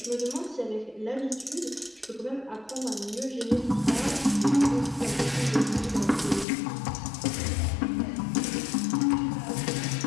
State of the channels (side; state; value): right; drops out; at 6.5 s